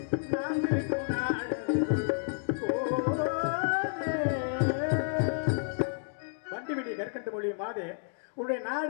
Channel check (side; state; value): right; silent; digital silence